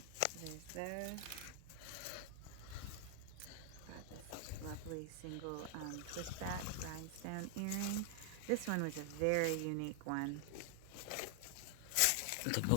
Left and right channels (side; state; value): both; different; correlation 0.00